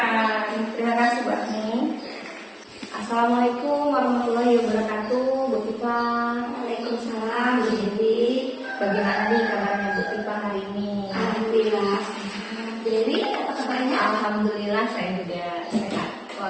Terima kasih Bu Afni. Assalamualaikum warahmatullahi wabarakatuh, Bu Tifa. Waalaikumsalam, Bu Dewi. Bagaimana nih kabarnya Bu Tifa hari ini? Alhamdulillah sehat. Dewi, apa kabarnya? Alhamdulillah saya juga sehat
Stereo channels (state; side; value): identical; both; correlation 1.00